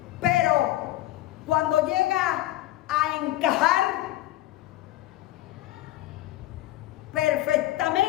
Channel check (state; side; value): quieter; right; 15.7 dB